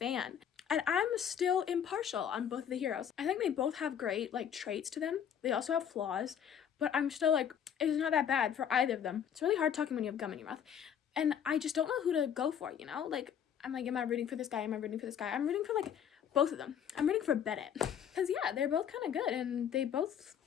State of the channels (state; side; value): quieter; right; 8.6 dB